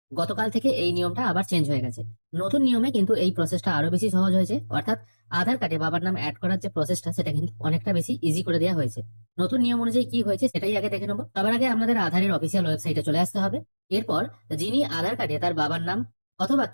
গতকাল থেকে এই নিয়মটা আবার চেঞ্জ হয়ে গেছে। নতুন নিয়মে কিন্তু এই প্রসেসটা আরো বেশি সহজ হয়েছে, অর্থাৎ আধার কার্ডে বাবার নাম অ্যাড করার যে প্রসেসটা সেটা কিন্তু অনেকটা বেশি ইজি করে দেওয়া হয়েছে। নতুন নিয়ম অনুযায়ী কি হয়েছে সেটাই আগে দেখে নেবো। সবার আগে আমাদের আধারের অফিসিয়াল ওয়েবসাইটে চলে আসতে হবে। এরপর যিনি আধার কার্ডে তার বাবার নাম অথবা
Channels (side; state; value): both; inverted; correlation -1.00